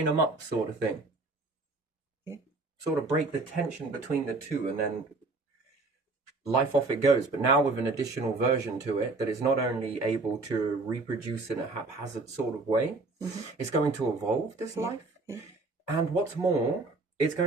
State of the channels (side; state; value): left; quieter; 3.4 dB